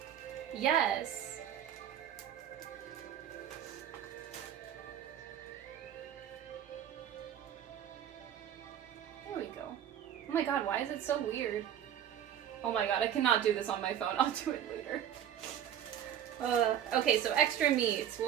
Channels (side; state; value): left; quieter; 10.0 dB